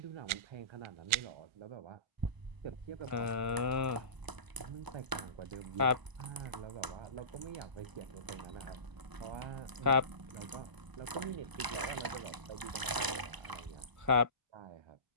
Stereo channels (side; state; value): left; late; 1.0 ms